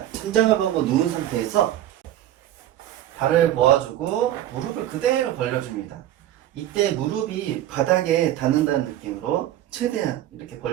천장을 보고 누운 상태에서 발을 모아주고 무릎을 그대로 벌려줍니다. 이때 무릎이 바닥에 닿는다는 느낌으로 최대한 이렇게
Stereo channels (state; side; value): quieter; left; 12.7 dB